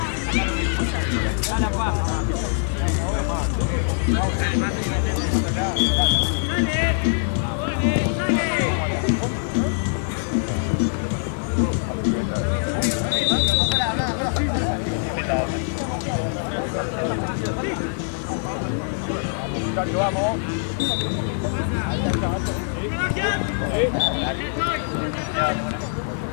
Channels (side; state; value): right; silent; 63 dB below the other